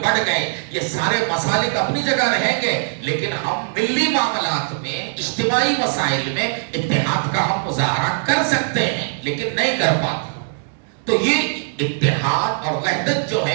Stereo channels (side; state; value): left; silent; digital silence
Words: بڑھ گئے، یہ سارے مسالک اپنی جگہ رہیں گے، لیکن ہم ملی معاملات میں، اجتماعی مسائل میں اتحاد کا ہم مظاہرہ کر سکتے ہیں لیکن نہیں کر پاتے۔ تو یہ اتحاد اور وحدت جو